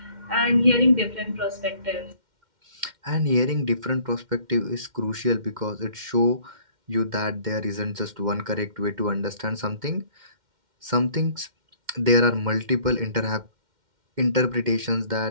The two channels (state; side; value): late; left; 2.1 ms